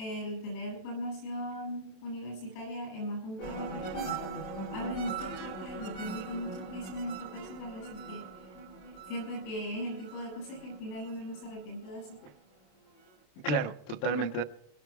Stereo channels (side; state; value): right; late; 27 ms